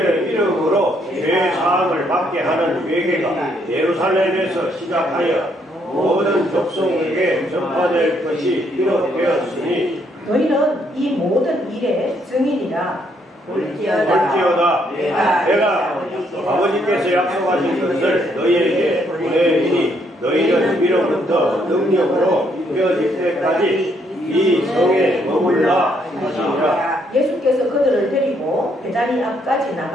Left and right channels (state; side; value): normal; both; correlation 0.71